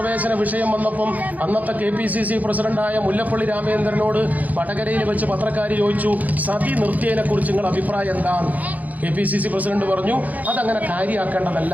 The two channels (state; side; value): late; left; 0.078 ms